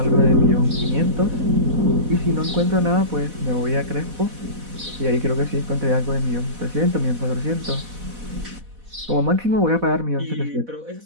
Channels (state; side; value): late; left; 4.1 ms